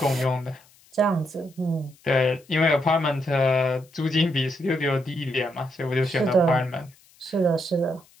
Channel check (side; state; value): left; noise; hiss, 29 dB below the sound